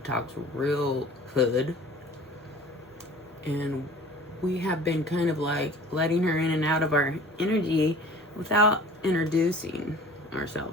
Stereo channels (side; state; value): both; normal; correlation 0.45